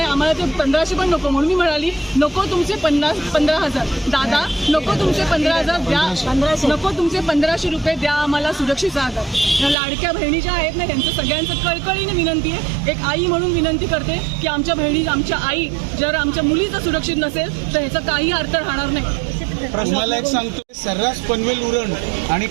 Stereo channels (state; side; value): drops out; left; at 9.8 s